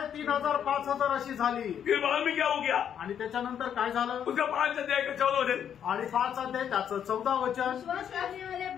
3,000 5,000 अशी झाली। फिर बाद में क्या हो गया? आणि त्याच्यानंतर काय झालं? उसका 5 अध्याय का 14 वचन आणि 5 अध्याय त्याचं 14 वचन, विश्वास करने वाले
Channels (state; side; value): quieter; right; 8.9 dB